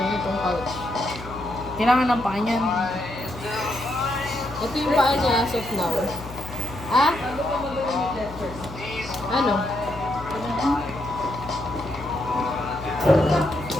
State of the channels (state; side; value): noise; left; hum, 13 dB below the sound